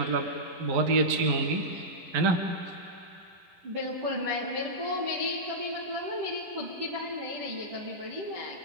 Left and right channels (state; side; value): late; left; 11 ms